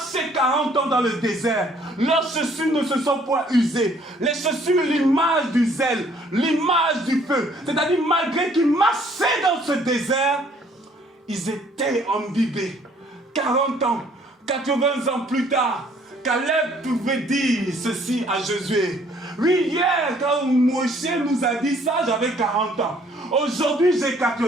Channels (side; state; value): both; normal; correlation 0.61